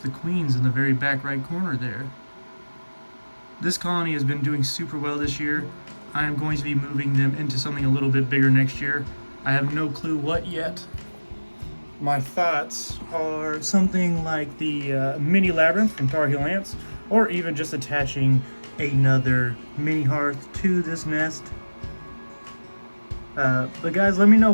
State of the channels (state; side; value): inverted; both; correlation -1.00